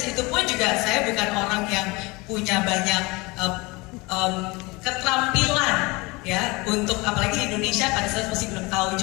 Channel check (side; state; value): right; quieter; 24.8 dB